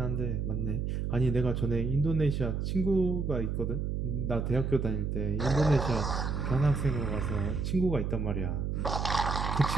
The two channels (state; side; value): noise; right; hum, 1 dB below the sound